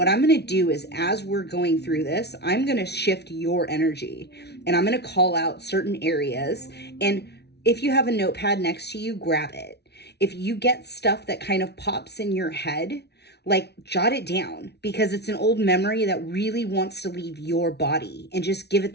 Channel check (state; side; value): late; right; 0.49 ms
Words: I'm going to do is, as we're going through this, I'm going to shift your energy and I'm going to call out certain areas. And If you have a notepad next to you, grab it. If you get stuff that kind of pops in your head, like jot it down, because it's an old memory that really wants to leave your body, and just give it